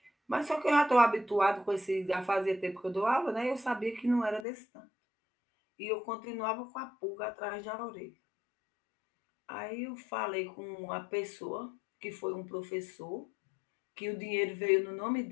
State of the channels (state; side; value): drops out; right; at 4.5 s